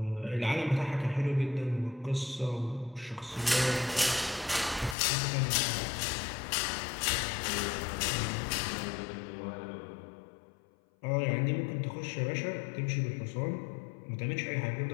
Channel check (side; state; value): right; drops out; at 5.0 s